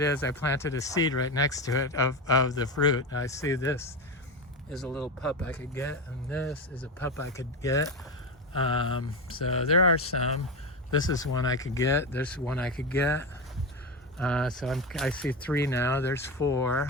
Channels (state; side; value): normal; both; correlation 0.17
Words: is. I planted a seed right next to it of the fruit. I see this is a little pup I could get, and this is a pup I could get. So there are some. This is one I could get. There's one I could get. So I see 3 now. There's